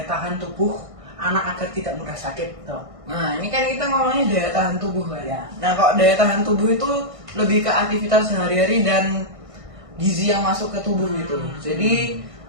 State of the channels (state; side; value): late; left; 1.5 ms